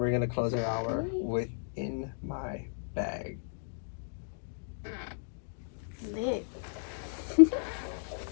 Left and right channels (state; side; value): silent; right; digital silence